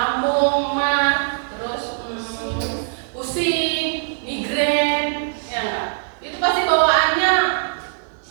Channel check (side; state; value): left; silent; digital silence